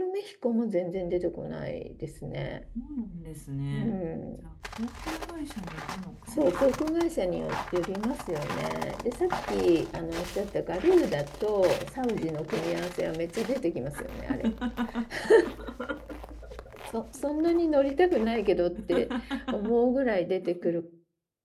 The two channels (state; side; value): identical; both; correlation 1.00